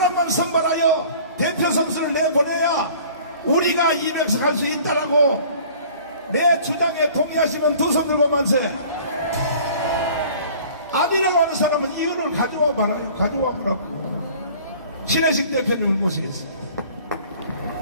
선발하여 대표 선수를 내보내야 우리가 200석 할 수 있다라고 내 주장에 동의하시면 두 손 들고 만세. 아니라고 하는 사람은 이유를 가져와 봐라요. 가져와 보라고. 신혜식 대표님을 모시겠습니다.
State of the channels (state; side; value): inverted; both; correlation -0.49